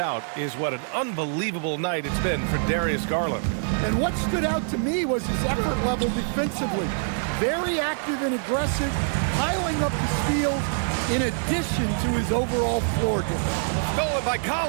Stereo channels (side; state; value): left; silent; digital silence